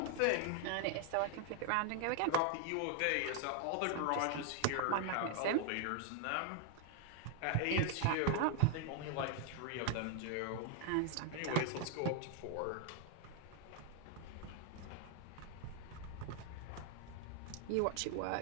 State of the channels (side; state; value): both; different; correlation 0.00